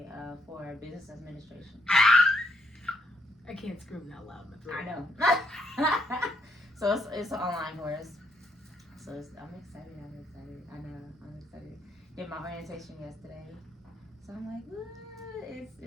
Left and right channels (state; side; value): normal; both; correlation 0.74